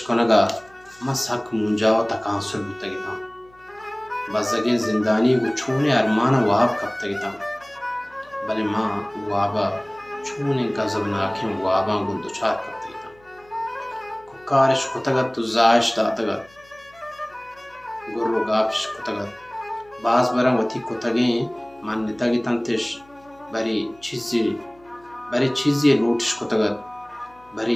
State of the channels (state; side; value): noise; left; hum, 29 dB below the sound